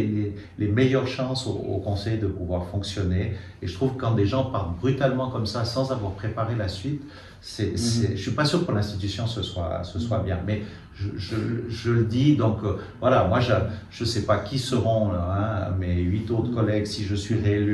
les meilleures chances au conseil de pouvoir fonctionner. Et je trouve que quand des gens partent brutalement comme ça, sans avoir préparé la suite, je ne suis pas sûr que pour l'institution ce soit bien. Mais je le dis, donc voilà, moi je ne sais pas qui seront mes 8 autres collègues si je suis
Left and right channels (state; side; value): identical; both; correlation 1.00